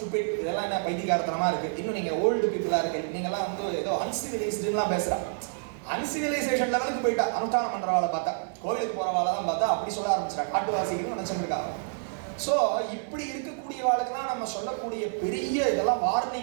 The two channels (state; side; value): silent; left; 59 dB below the other